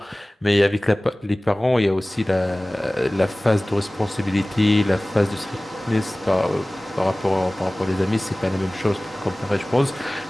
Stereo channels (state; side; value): normal; both; correlation 0.98